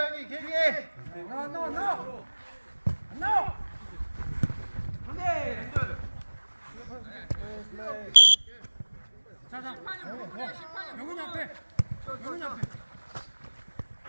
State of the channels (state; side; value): inverted; both; correlation -1.00